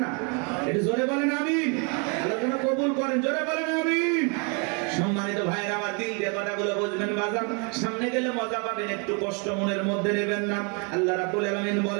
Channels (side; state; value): left; quieter; 35.0 dB